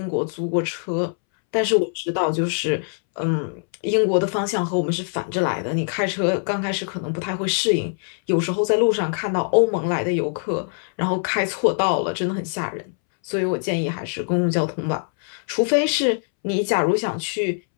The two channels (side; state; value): right; silent; 64 dB below the other